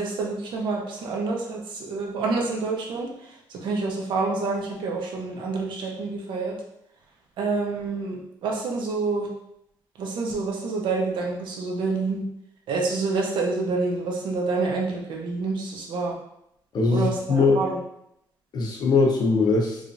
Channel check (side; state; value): both; normal; correlation 0.60